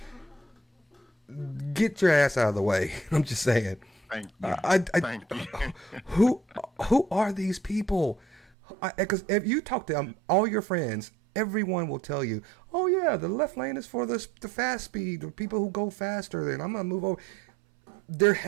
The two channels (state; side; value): drops out; left; at 8.5 s